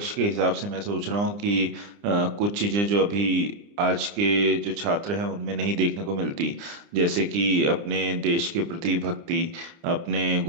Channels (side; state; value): left; late; 29 ms